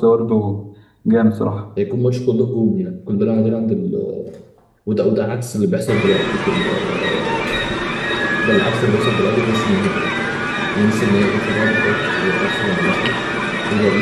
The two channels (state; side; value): identical; both; correlation 1.00